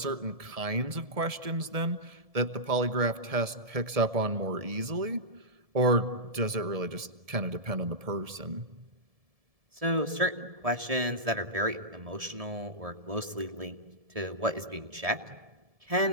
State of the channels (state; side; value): late; left; 1.7 ms